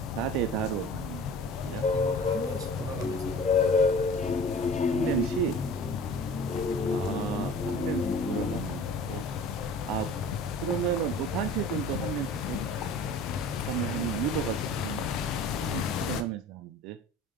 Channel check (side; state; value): both; normal; correlation 0.43